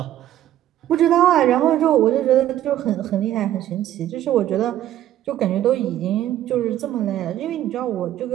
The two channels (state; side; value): quieter; left; 12.5 dB